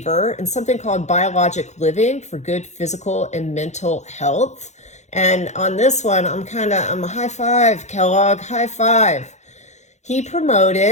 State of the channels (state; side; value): late; right; 0.33 ms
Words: in something called biologic living for good physical and mental health. And on this one, I'm a high five, Kellogg, high five. He